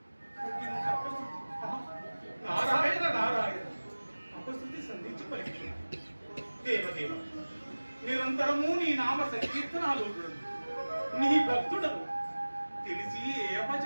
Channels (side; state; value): both; inverted; correlation -1.00